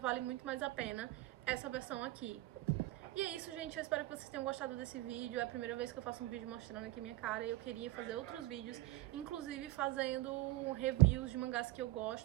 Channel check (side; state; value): left; quieter; 17.8 dB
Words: muito mais a pena essa versão aqui. E é isso, gente, eu espero que vocês tenham gostado desse vídeo. É a primeira vez que eu faço um vídeo mostrando aqui minha cara, e eu queria fazer outros vídeos, inclusive fazendo reviews de mangás que eu